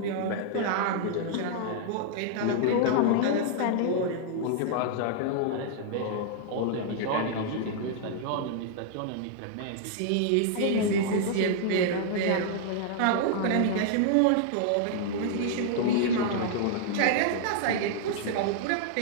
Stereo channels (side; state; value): both; different; correlation -0.01